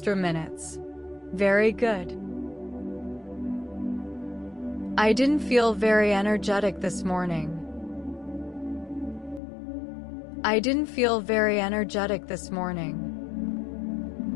minutes. Very good. I didn't feel very energetic this morning. I didn't feel very energetic this morning.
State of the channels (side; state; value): right; drops out; at 9.4 s